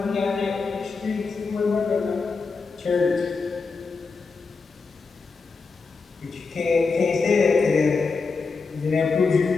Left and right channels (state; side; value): quieter; right; 4.5 dB